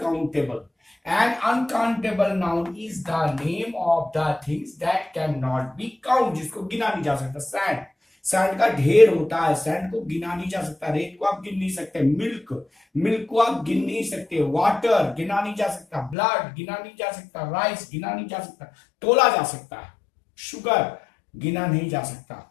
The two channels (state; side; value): drops out; right; at 16.2 s